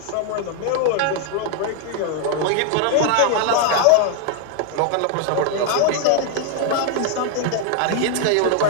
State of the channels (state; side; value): different; both; correlation 0.00